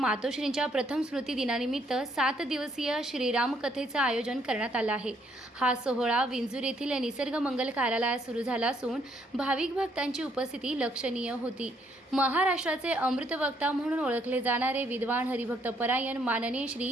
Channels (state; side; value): normal; both; correlation 0.69